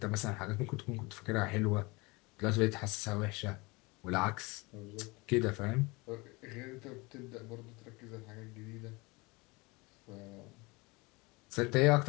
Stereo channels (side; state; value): right; quieter; 25.1 dB